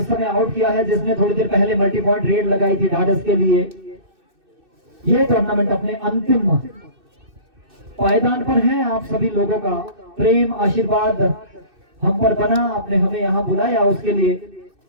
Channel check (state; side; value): late; left; 2.6 ms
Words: समय आउट किया है जिसने थोड़ी देर पहले मल्टी पॉइंट रेड लगाई थी ढाढस के लिए। ये टूर्नामेंट अपने अंतिम पायदान पर है। आप सभी लोगों का प्रेम आशीर्वाद हम पर बना, आपने हमें यहाँ बुलाया, उसके लिए